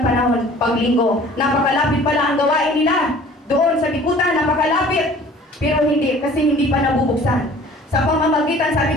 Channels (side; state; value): both; normal; correlation 0.49